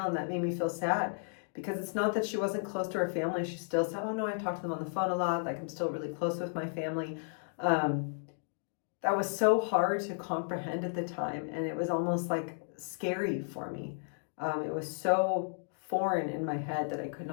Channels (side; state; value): right; silent; digital silence